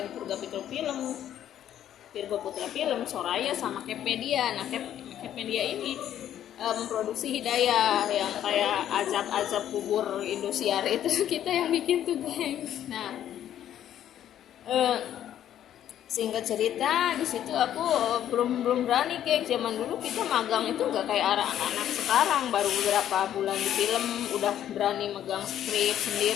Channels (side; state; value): right; quieter; 10.9 dB